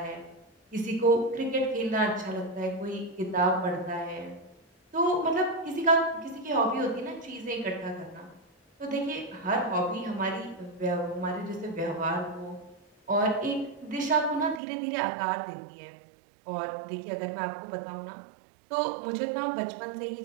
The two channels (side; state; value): left; drops out; at 14.6 s